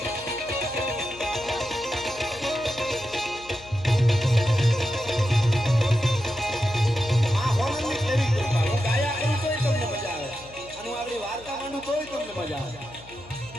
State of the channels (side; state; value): left; noise; hum, 21 dB below the sound